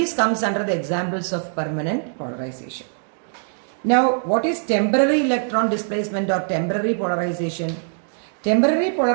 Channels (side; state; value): left; silent; 64 dB below the other